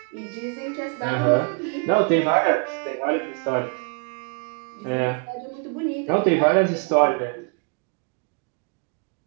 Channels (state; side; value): quieter; left; 36.0 dB